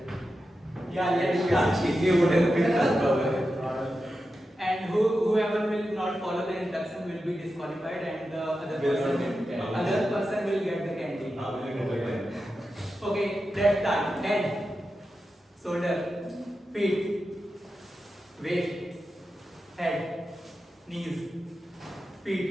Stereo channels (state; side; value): normal; both; correlation 0.90